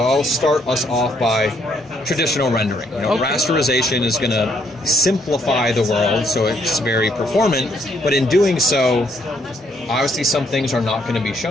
I'll start us off by traditional rendering. Rasterization is going to simplify the world, so it's very performant. But in doing so, obviously some things are not going to be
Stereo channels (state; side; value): normal; both; correlation 0.70